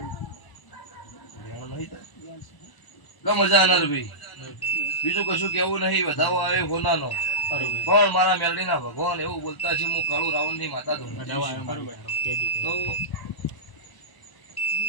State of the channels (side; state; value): right; late; 1.0 ms